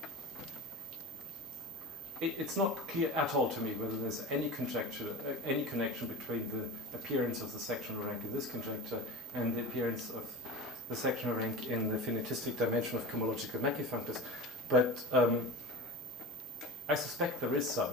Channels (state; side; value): normal; both; correlation 0.30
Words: It's not clear at all to me whether there's any conjecture, any connection between the appearance of the sectional rank in this conjecture and the appearance of the sectional rank in the finitistic dimension of cohomological Mackey-functors, but I suspect there is